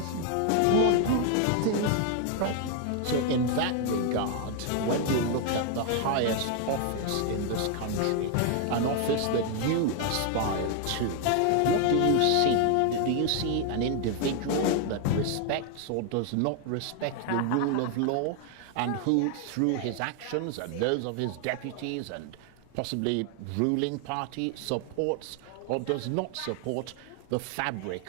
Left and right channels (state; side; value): different; both; correlation 0.00